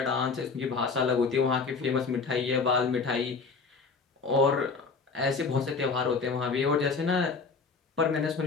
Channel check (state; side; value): quieter; right; 4.6 dB